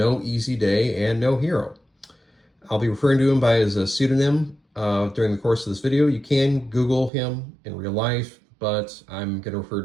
Easy Day and No Hero. I'll be referring to him by his pseudonym during the course of this video. You can Google him in real life, but I'm going to refer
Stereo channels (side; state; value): left; drops out; at 7.1 s